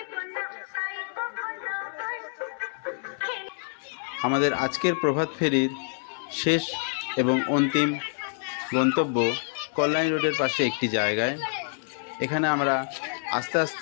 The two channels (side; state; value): right; silent; 58 dB below the other